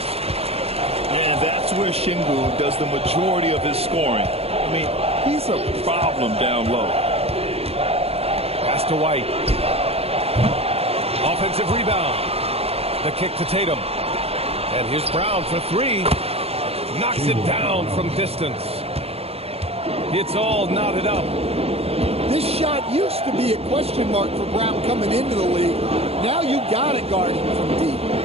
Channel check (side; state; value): left; late; 0.29 ms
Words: And that's where Şengün does the majority of his scoring. I mean, he's a problem down low. Pass to White. Offensive rebound. The kick to Tatum. And here's Brown for three. Knocks it down from distance. It's all knotted up. This shot used to be a question mark for Brown coming into the league. Now you got to guard him from deep.